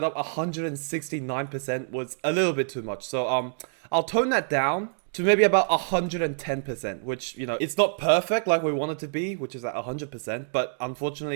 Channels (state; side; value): silent; left; digital silence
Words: up 169% was a little bit too much. So, I'll tone that down to maybe about 110%, which, you know, it's not perfect like we want it to be, which is at 100%. But